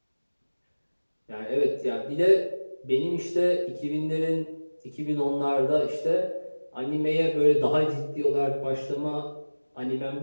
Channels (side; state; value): both; inverted; correlation -1.00